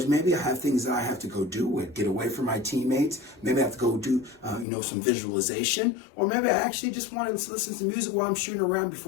maybe I have things that I have to go do and get away from my teammates? Maybe I have to go do, some visualization, or maybe I actually just want to listen to music while I'm shooting around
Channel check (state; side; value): drops out; right; at 4.7 s